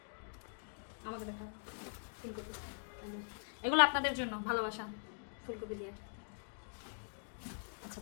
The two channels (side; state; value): right; silent; digital silence